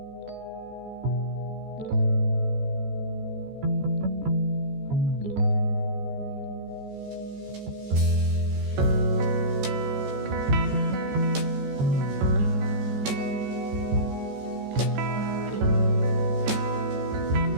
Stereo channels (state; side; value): late; left; 14 ms